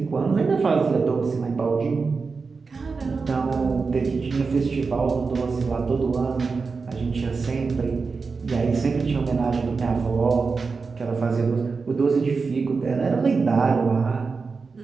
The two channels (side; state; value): left; quieter; 4.6 dB